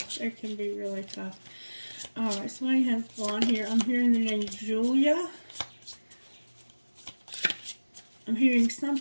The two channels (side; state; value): both; inverted; correlation -1.00